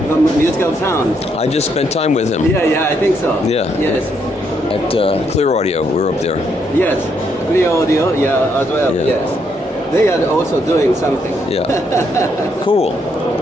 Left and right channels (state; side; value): normal; both; correlation 0.75